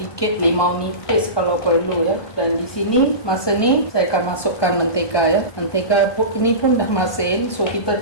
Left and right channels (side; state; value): right; late; 1.2 ms